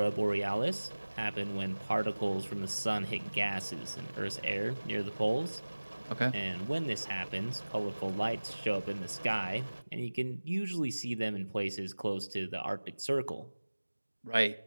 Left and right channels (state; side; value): inverted; both; correlation -1.00